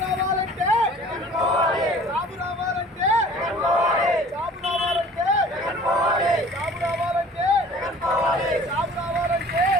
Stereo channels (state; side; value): normal; both; correlation 0.48